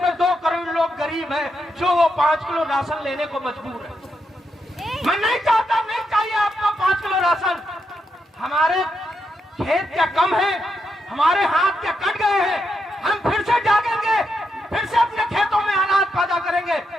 2 करोड़ लोग गरीब हैं जो वो 5 किलो राशन लेने को मजबूर है। मैं नहीं चाहता, नहीं चाहिए आपको 5 किलो राशन। हमारे खेत क्या कम है, हमारे हाथ क्या कट गए हैं, हम फिर से जागेंगे, फिर से अपने खेतों में अनाज पैदा करेंगे।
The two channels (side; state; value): both; normal; correlation 0.82